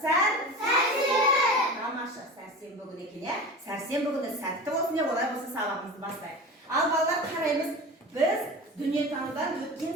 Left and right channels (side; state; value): both; normal; correlation 0.32